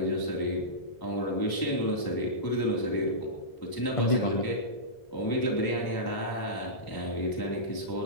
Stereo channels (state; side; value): late; right; 1.0 ms